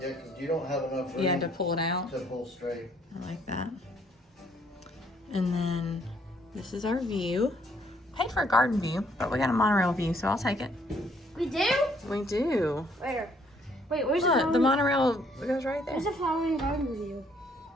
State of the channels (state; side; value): normal; both; correlation 0.66